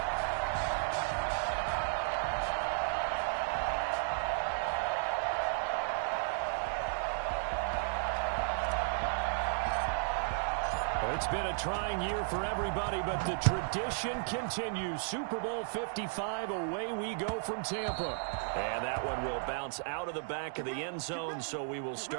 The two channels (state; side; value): silent; left; digital silence